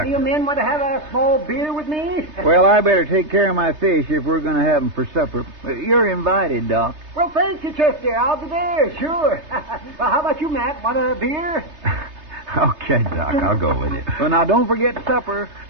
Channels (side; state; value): left; late; 3.3 ms